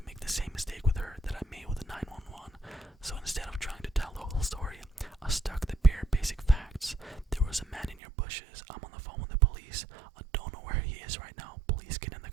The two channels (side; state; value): left; drops out; at 8.0 s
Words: make the same mistake with her that I made with the 911, so instead of trying to tell the whole story, I stuck the bare basic facts. There was a man in your bushes, I'm on the phone with the police, I don't know where he is right now, please get in the